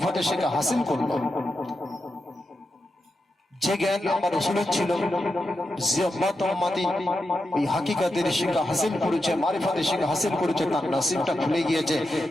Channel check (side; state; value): both; normal; correlation 0.88